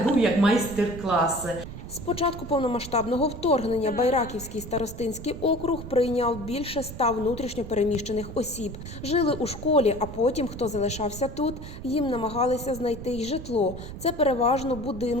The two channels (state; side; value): noise; right; rumble, 11 dB below the sound